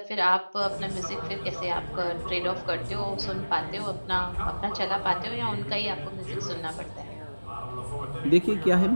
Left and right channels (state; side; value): inverted; both; correlation -1.00